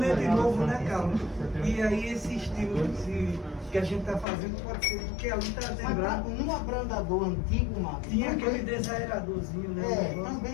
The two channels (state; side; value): drops out; right; at 4.2 s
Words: novo, né, Carlos? E aí esse estilo que a gente está fazendo pode ser, porque ali está lembrado. No abrandador antigo, Marcos, tinha aquele desaeradorzinho, né?